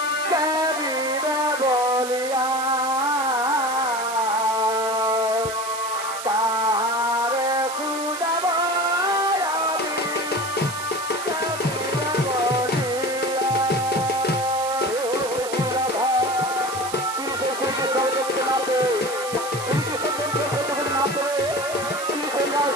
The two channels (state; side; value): noise; right; hiss, 10 dB below the sound